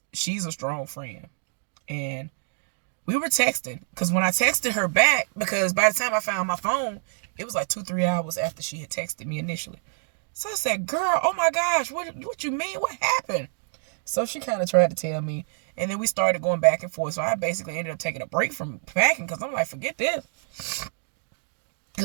She's a strong friend. And we were texting, because when I texted her back, because by the time I found my phone, it was like 2-3 hours after she had texted me initially. So I said, girl, oh my gosh, what you mean? What happened? So she kind of tried to tell me. And then we started going back and forth. So I basically ended up taking a break from packing because I'm like, forget this.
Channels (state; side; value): silent; left; digital silence